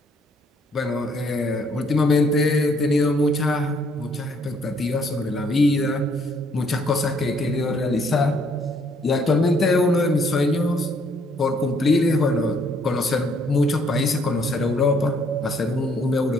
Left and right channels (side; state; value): both; normal; correlation 0.66